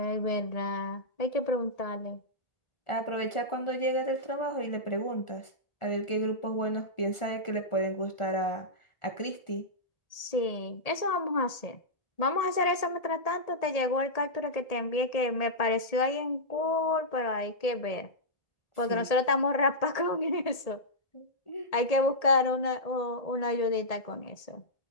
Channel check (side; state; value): right; late; 1.8 ms